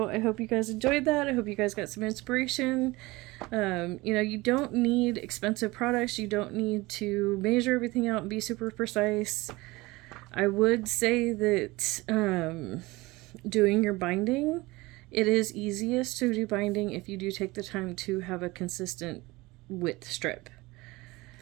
I hope you guys enjoyed that. I hope you guys got some inspiration. You know, you don't need expensive products. You don't need to measure everything out and be super precise. I would say that doing your binding, it is easiest to do binding if you do take the time to have a consistent width strip.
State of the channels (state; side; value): quieter; left; 21.4 dB